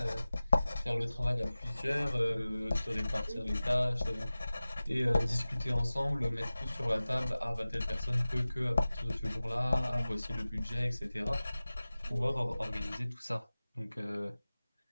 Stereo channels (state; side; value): inverted; both; correlation -0.98